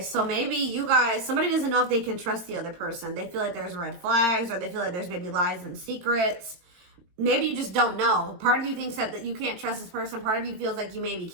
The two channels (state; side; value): late; left; 22 ms